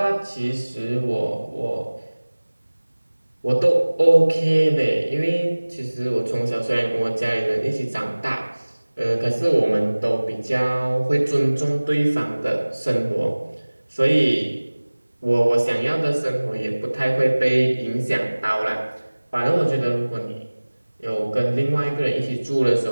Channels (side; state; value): both; inverted; correlation -1.00